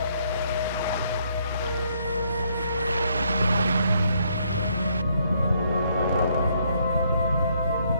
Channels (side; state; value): both; inverted; correlation -0.70